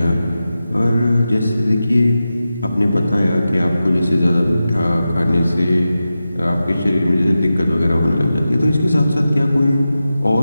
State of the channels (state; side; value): inverted; both; correlation -0.93